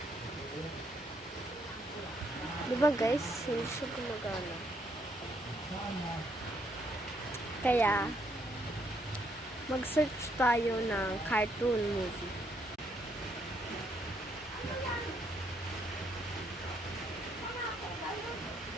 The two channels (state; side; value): normal; both; correlation 0.72